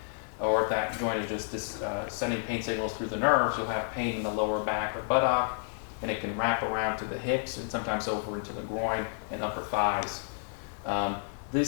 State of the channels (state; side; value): silent; right; digital silence